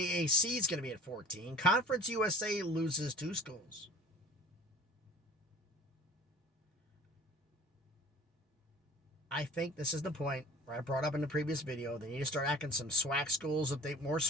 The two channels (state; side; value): normal; both; correlation 0.44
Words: is going to be at 14. Conference USA loses 2 schools. I think this is the point where I brought up in the previous video. They need to start acting some SWAC schools more